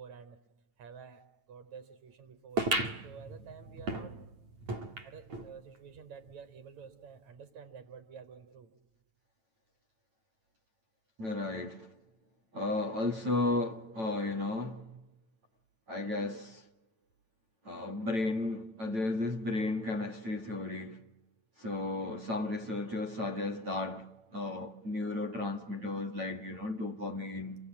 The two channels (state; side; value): late; left; 9.0 ms